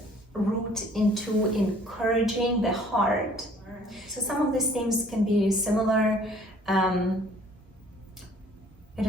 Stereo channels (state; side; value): normal; both; correlation 0.55